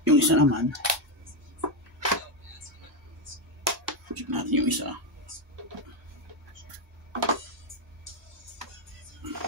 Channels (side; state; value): both; normal; correlation 0.06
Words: Yung isa naman, check natin yung isa.